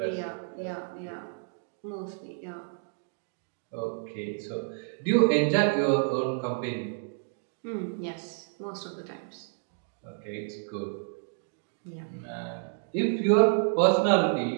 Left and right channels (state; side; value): silent; left; digital silence